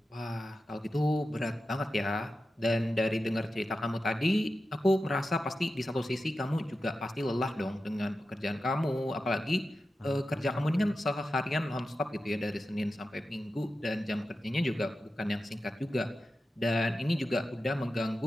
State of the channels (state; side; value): normal; both; correlation 0.92